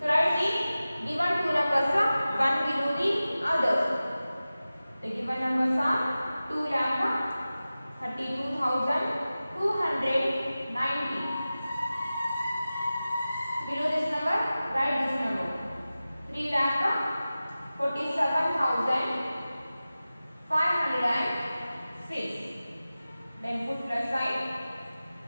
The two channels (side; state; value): both; inverted; correlation -0.96